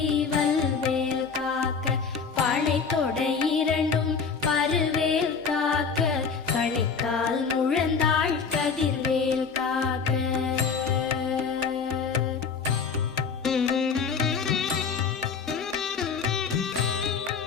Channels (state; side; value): quieter; right; 5.6 dB